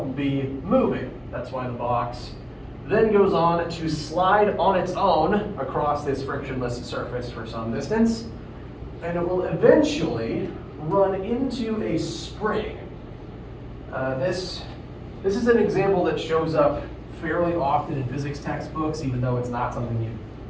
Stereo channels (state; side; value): identical; both; correlation 1.00